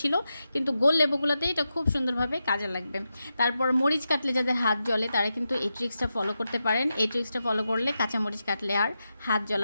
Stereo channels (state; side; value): inverted; both; correlation -0.89